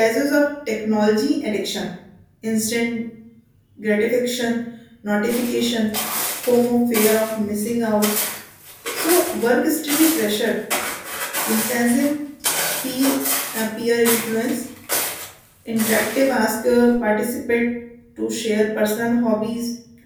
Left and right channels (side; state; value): both; identical; correlation 1.00